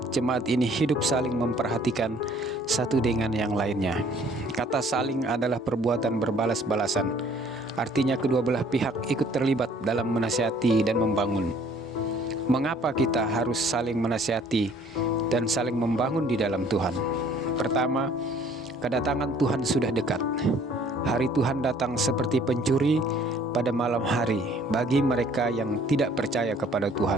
jemaat ini hidup saling memperhatikan satu dengan yang lainnya. Kata saling adalah perbuatan berbalas-balasan. Artinya kedua belah pihak ikut terlibat dalam menasihati dan membangun. Mengapa kita harus saling menasihati dan saling membangun di dalam Tuhan? Pertama, kedatangan Tuhan sudah dekat. Hari Tuhan datang seperti pencuri pada malam hari bagi mereka yang tidak percaya kepada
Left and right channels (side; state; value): both; normal; correlation 0.57